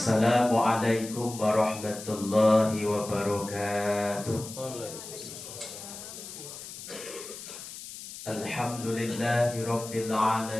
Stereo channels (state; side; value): noise; left; hiss, 12 dB below the sound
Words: Assalamualaikum warahmatullahi wabarakatuh. Alhamdulillahi rabbil